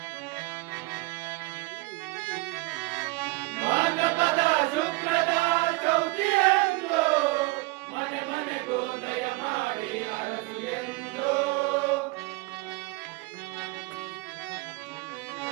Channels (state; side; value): quieter; left; 23.9 dB